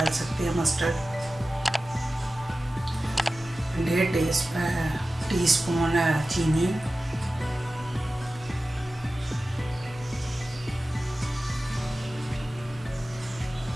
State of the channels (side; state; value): both; normal; correlation 0.95